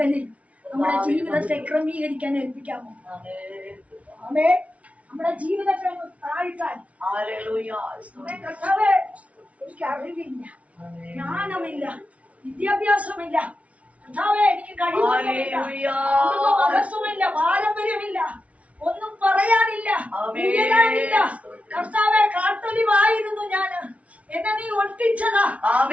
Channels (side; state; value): left; late; 0.065 ms